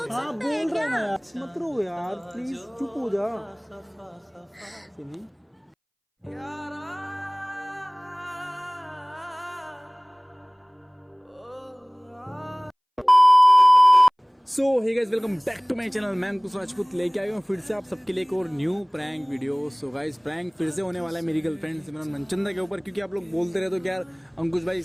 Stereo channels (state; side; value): identical; both; correlation 1.00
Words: सकता है बोल रहा क्या? है ना यार, मत रो यार प्लीज, चुप हो जा। सुनी so hey guys, welcome back to my channel. मैं अंकुश राजपूत लेके आया हूँ फिर से आप सबके लिए एक और new prank video. So guys, prank फिर से होने वाला है मेरी गर्लफ्रेंड सिमरन मनचंदा के ऊपर, क्योंकि आप लोग बोलते रहते हो कि यार अंकुश भाई